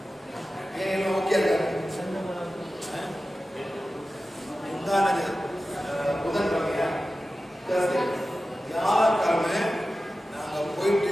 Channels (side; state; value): both; normal; correlation 0.94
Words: ஏன் எல்லாம் ஓகே இருக்காங்க? உண்டானது புதன்கிழமையா யாருக்கிழமை நாங்கள்